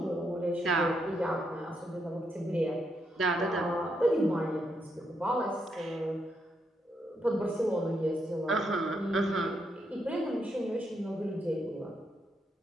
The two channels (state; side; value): normal; both; correlation 0.79